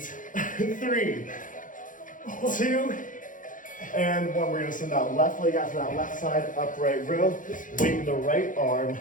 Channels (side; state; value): right; late; 0.38 ms